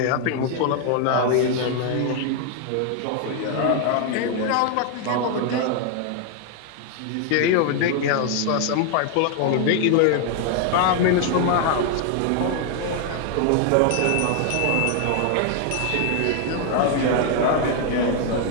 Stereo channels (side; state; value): both; different; correlation 0.00